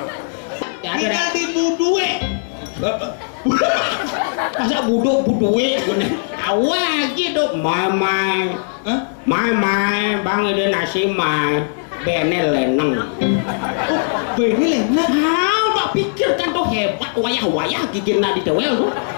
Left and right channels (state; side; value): silent; right; digital silence